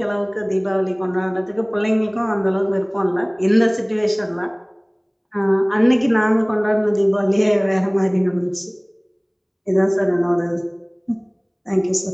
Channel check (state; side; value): identical; both; correlation 1.00